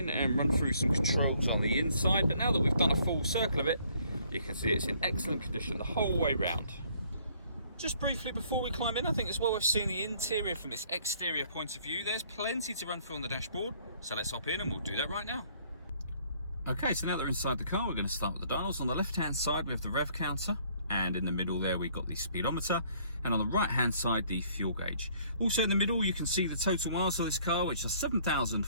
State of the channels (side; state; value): both; inverted; correlation -0.62